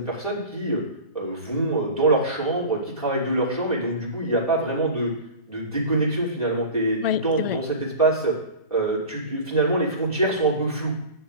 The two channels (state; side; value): inverted; both; correlation -0.35